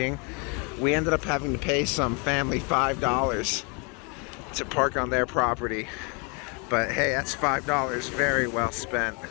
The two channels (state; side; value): quieter; right; 33.1 dB